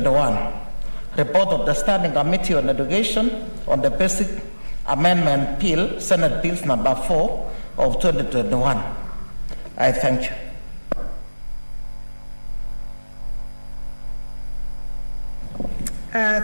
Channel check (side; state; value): both; inverted; correlation -1.00